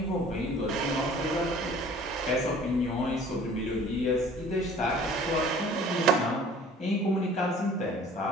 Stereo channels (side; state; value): both; normal; correlation 0.49